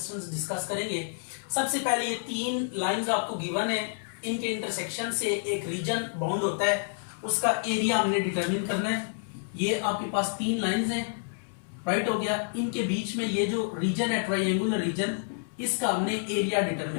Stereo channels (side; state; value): right; silent; 59 dB below the other